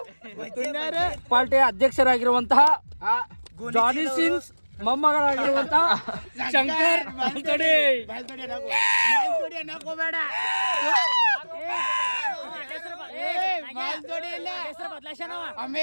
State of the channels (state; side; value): inverted; both; correlation -1.00